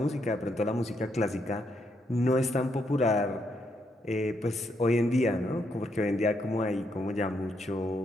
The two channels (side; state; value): both; normal; correlation 0.77